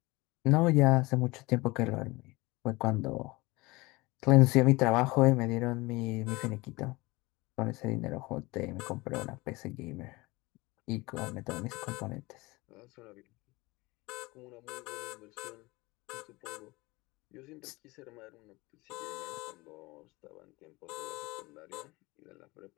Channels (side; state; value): right; quieter; 22.6 dB